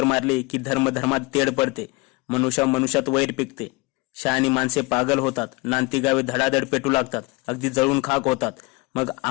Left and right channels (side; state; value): right; quieter; 25.3 dB